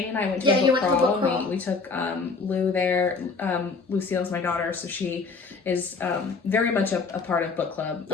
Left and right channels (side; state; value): right; quieter; 4.4 dB